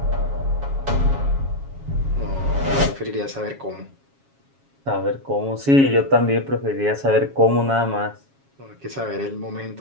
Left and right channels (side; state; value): left; late; 7.3 ms